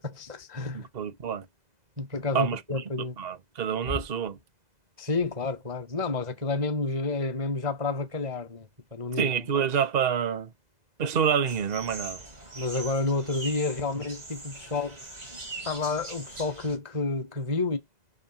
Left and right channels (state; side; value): late; left; 2.0 ms